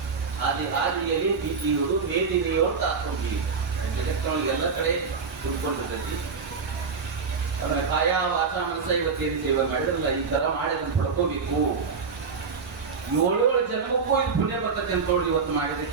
ಹಾದಿಯಲ್ಲಿ ಬೀದಿಯೋಡು ಮೇದಿನಿಯೋಡು ತಾತ್ಕೊಂಡಿ ಎಲ್ಲ ಕಡೆ ಕುತ್ಕೊಂಡಿರ್ತೈತಿ. ಅವರ ಕಾಯ ವಾಚ ಮನಸ್ಸ ಇವತ್ತೇನು ಸೇವೆ ಮಾಡಿದ್ರಲ್ಲ ಈ ತರ ಮಾಡಿ ಅದನ್ನು ಪಡ್ಕೋಬೇಕು. 7 ಜನ್ಮಕ್ಕೂ ಇದು ಪುಣ್ಯ ಬರ್ತದೆ ಅಂತ ನೋಡಿ ಇವತ್ತು ಮಾಡಿದ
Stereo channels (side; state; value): left; quieter; 5.2 dB